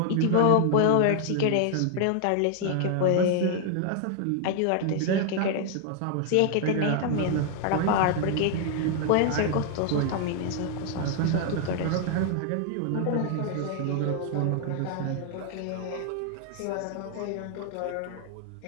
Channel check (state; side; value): different; both; correlation 0.00